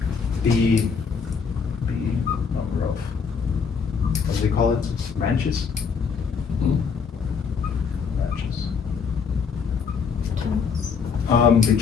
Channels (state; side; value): quieter; right; 5.9 dB